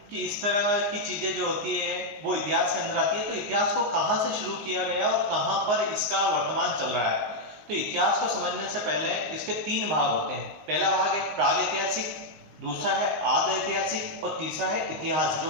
कि इस तरह की चीजें जो होती है वो इतिहास के अंदर आती है, तो इतिहास को कहां से शुरू किया गया और कहां पर इसका वर्तमान चल रहा है। तो इतिहास को समझने से पहले इसके 3 भाग होते हैं। पहला भाग है प्राग ऐतिहासिक, दूसरा है आद ऐतिहासिक और तीसरा है इतिहास जो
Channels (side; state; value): left; late; 19 ms